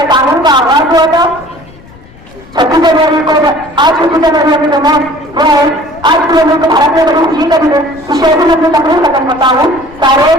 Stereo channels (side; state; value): left; noise; rumble, 23 dB below the sound